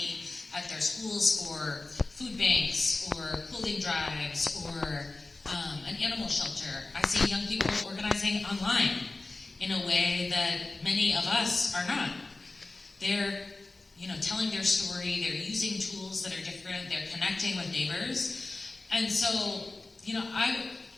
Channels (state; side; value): quieter; right; 3.2 dB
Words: at their schools for food banks or clothing drives or an animal shelter. I see young people organizing online in a way that many of us are not. They're, you know, telling their story, they're using tools that are different, they're connecting with neighbors. And so, you know, I